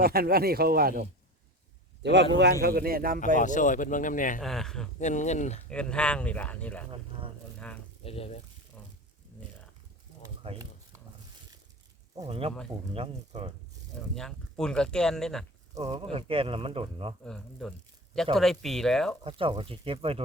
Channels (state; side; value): normal; both; correlation 0.31